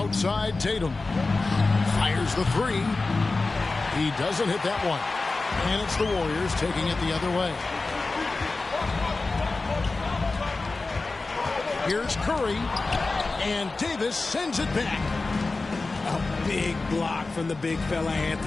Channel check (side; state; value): right; quieter; 3.6 dB